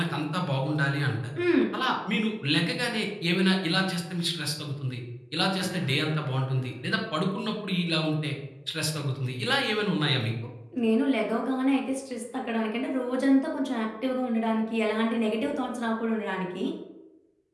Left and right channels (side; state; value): both; identical; correlation 1.00